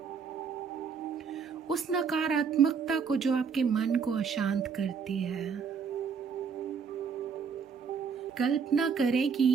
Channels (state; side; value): quieter; left; 6.2 dB